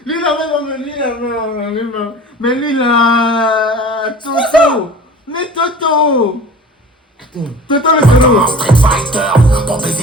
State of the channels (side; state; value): both; normal; correlation 0.42